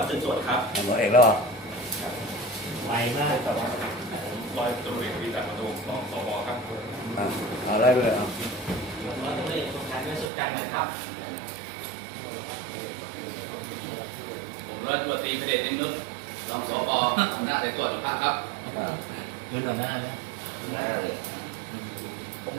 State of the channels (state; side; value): drops out; left; at 10.3 s